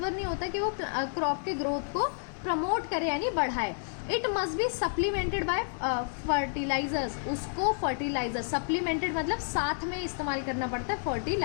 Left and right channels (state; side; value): silent; right; 58 dB below the other